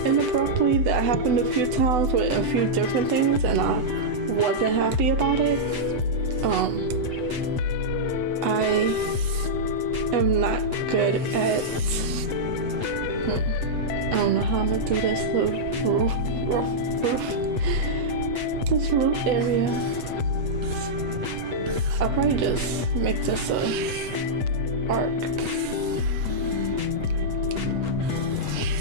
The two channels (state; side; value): late; left; 8.1 ms